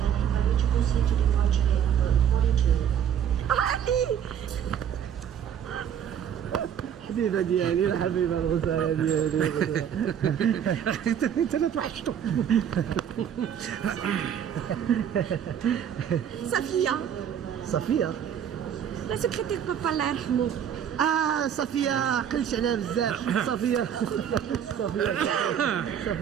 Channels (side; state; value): left; quieter; 8.9 dB